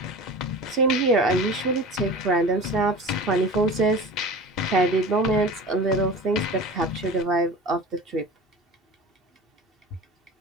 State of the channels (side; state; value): both; normal; correlation 0.34